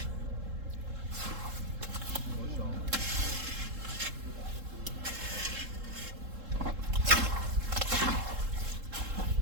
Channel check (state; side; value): late; left; 3.7 ms